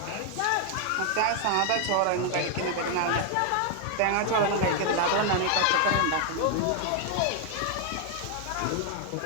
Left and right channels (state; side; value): different; both; correlation 0.00